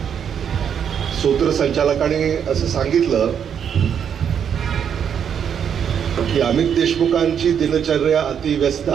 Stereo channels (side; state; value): left; quieter; 8.1 dB